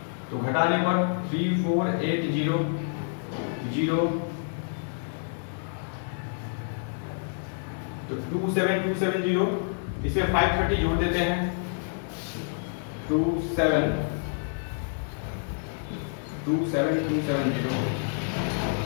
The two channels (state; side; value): silent; right; digital silence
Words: तो घटाने पर 3480 तो 27270, इसमें 530 जोड़ देते हैं,